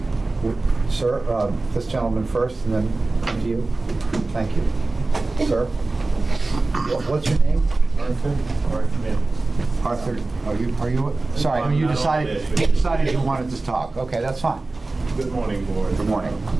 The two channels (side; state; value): left; quieter; 3.3 dB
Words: Sir, this gentleman first, and then come to you. Thank you. Sir? What's your name? Arthur. Arthur, are you, sorry, you decided you wanted to talk. Okay, that's fine. Good morning, board. Good morning.